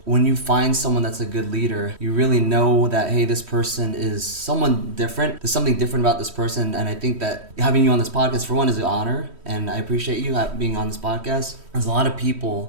when you find someone that's a good leader, you really know that, hey, this person is someone different. There's something different about this person, and I think that having you on this podcast, for one, is an honor, and I appreciate you being on this podcast. There's a lot of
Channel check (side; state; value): left; late; 3.1 ms